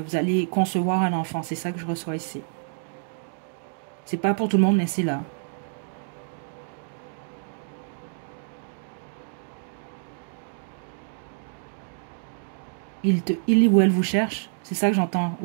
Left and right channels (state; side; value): silent; left; digital silence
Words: allez concevoir un enfant. C'est ça que je reçois ici. C'est pas pour tout le monde, mais c'est là. Il ou elle vous cherche. C'est ça que j'entends.